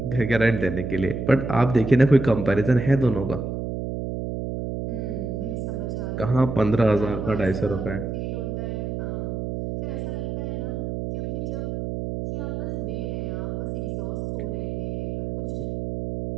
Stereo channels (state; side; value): noise; right; hum, 3 dB below the sound